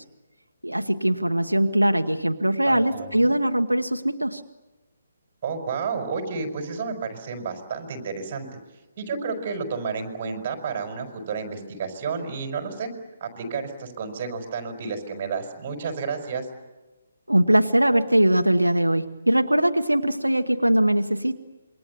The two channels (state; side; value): inverted; both; correlation -0.94